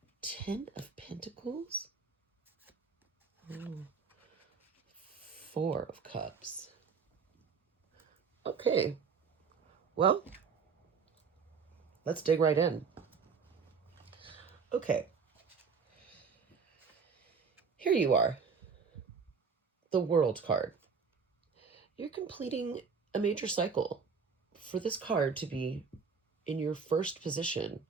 10 of Pentacles. Oh. Four of Cups. Okay. Well, let's dig right in. Okay. Here you are. The World card. You're completing a major cycle. For this card to be in your first position,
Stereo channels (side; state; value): left; quieter; 5.6 dB